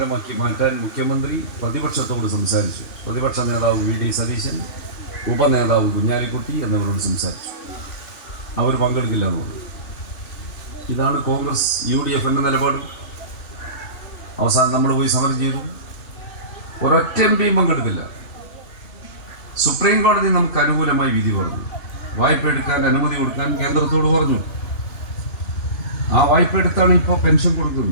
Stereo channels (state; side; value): late; right; 3.1 ms